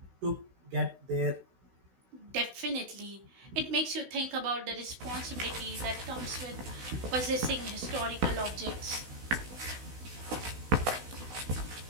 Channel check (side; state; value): left; late; 16 ms